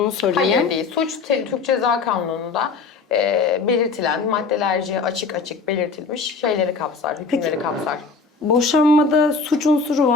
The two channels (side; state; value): right; quieter; 4.5 dB